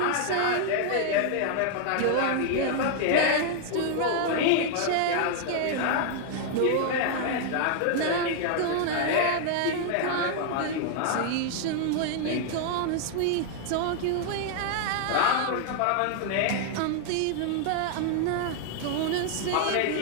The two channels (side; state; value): both; different; correlation 0.00